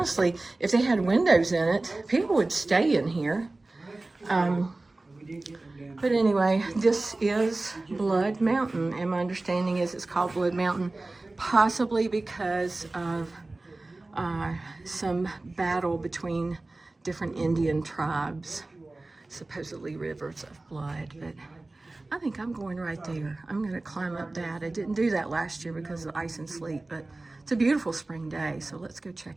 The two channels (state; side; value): quieter; left; 3.0 dB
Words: if they had windows in it, people would stay in here. But anyway, this is Blood Mountain, and my understanding is it's called Blood Mountain possibly because of some battle between different Indian tribes, supposedly rivers of blood. But I think I'm going right there. I'm going to climb up that. I didn't do that last year because of ice and sleet, but it's a beautiful spring day, so let's go